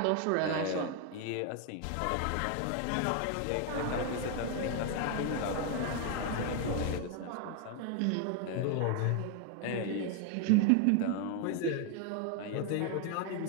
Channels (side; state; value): both; different; correlation 0.01